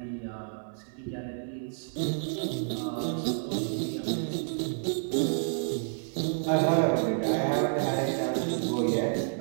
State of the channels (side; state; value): left; silent; 58 dB below the other